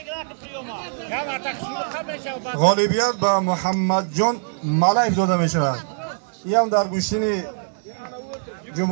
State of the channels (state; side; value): silent; left; digital silence